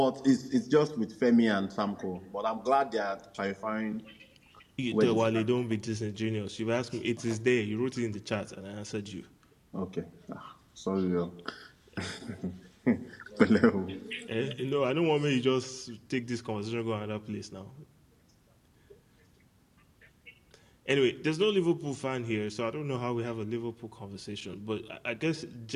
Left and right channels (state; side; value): identical; both; correlation 1.00